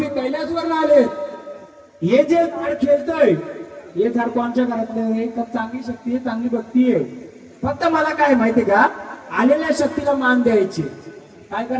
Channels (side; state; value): both; identical; correlation 1.00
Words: कैलासवर आलेत, हे जे झाड खेळतंय हे झाड कोणच्या घरातलं? का चांगली शक्ती आहे, चांगली भक्ती आहे. फक्त मला काय माहितीये का? आलेल्या शक्तीला मान द्यायचे. काय